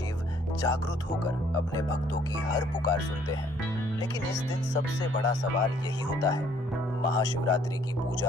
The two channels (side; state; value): both; normal; correlation 0.62